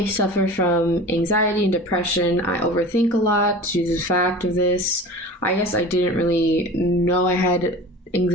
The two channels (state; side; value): normal; both; correlation 0.37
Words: suffer from anxiety and depression. I overthink a lot due to the fact of this. I guess I didn't really know I had